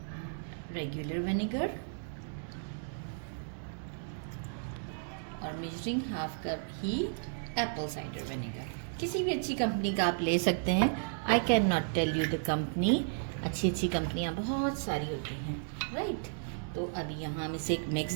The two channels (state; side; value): silent; left; 55 dB below the other